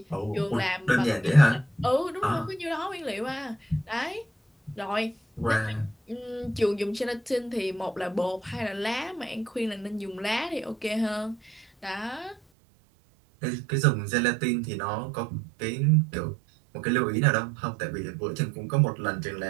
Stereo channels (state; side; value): drops out; left; at 12.4 s